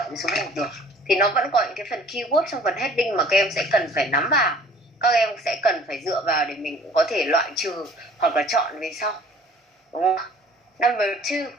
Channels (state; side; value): normal; both; correlation 0.52